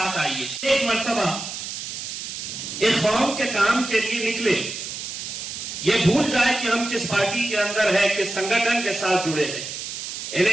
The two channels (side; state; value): right; noise; hiss, 7 dB below the sound